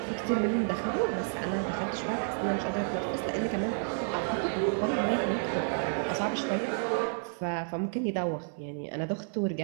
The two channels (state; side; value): silent; left; 56 dB below the other